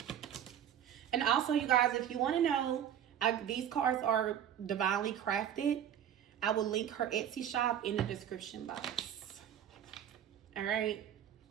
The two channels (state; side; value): quieter; left; 9.9 dB